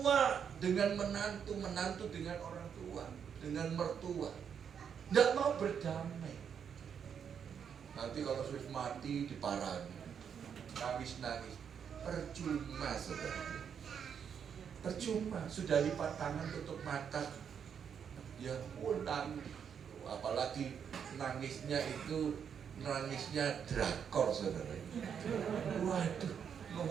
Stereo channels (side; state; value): left; quieter; 7.6 dB